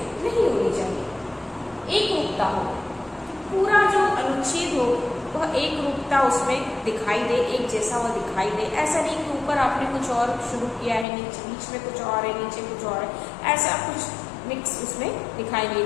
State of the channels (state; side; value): drops out; right; at 11.1 s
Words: होनी चाहिए। एक रूपता हो, पूरा जो अनुच्छेद हो वह एक रूपता उसमें दिखाई दे, एक जैसा वह दिखाई दे। ऐसा नहीं कि ऊपर आपने कुछ और शुरू किया है, नीचे बीच में कुछ और है, नीचे कुछ और है, ऐसा कुछ मिक्स उसमें दिखाई नहीं